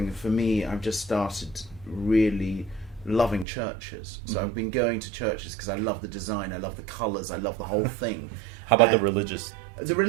for me. I've just started really loving churches. So I've been going to churches because I love the design, I love the colours, I love the whole thing. How about the religious? The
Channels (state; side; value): drops out; left; at 3.5 s